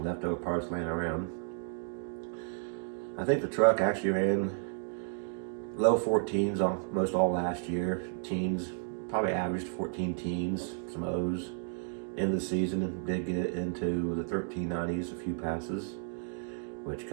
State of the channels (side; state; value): left; silent; digital silence